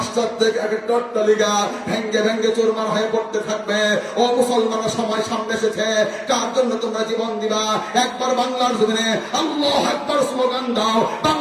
একটা অট্টালিকা ভেঙ্গে ভেঙ্গে চুরমার হয়ে পড়তে থাকবে। ও মুসলমানের সময় সামনে এসেছে, কার জন্য তোমরা জীবন দিবা? একবার বাংলার জমিনে আল্লাহু আকবার স্লোগান দাও,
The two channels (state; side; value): identical; both; correlation 1.00